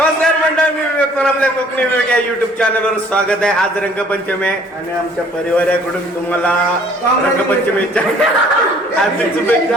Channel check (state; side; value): normal; both; correlation 0.57